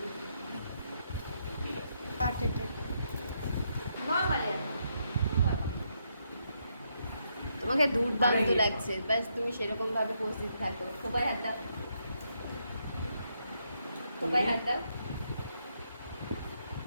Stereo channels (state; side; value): inverted; both; correlation -0.78